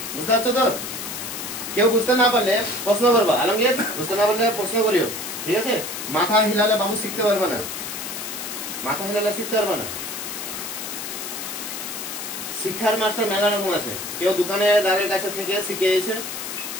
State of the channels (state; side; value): noise; left; hiss, 7 dB below the sound